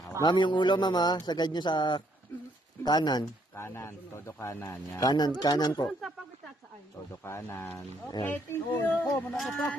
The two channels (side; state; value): both; normal; correlation 0.70